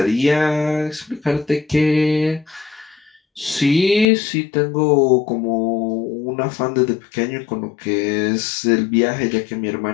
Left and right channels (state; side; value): drops out; right; at 4.0 s